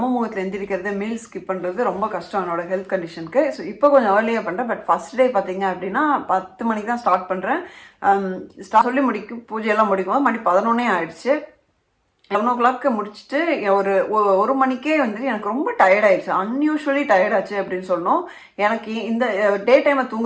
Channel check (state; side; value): identical; both; correlation 1.00